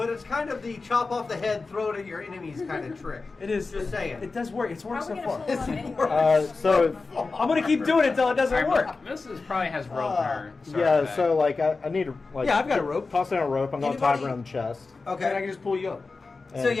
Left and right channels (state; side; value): quieter; right; 4.0 dB